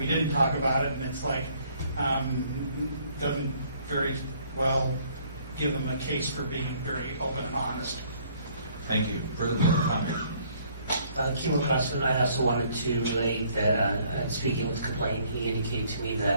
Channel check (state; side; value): inverted; both; correlation -0.62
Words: didn't talk about it. And it's like, doesn't very well give them a case for being very open and honest. Thank you. Further public comment? Kimo Crossman, I also wanted to relate that, speaking with the complainant, he indicated to me